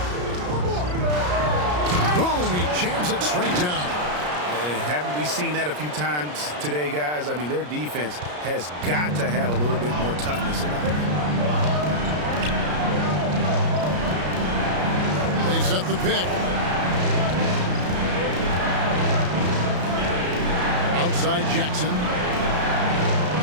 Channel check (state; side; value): late; left; 33 ms